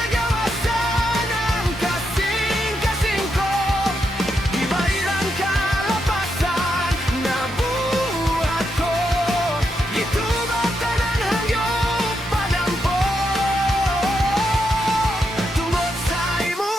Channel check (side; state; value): both; normal; correlation 0.82